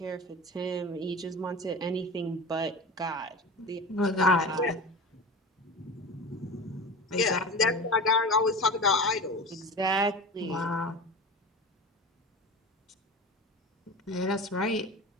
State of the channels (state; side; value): normal; both; correlation 0.31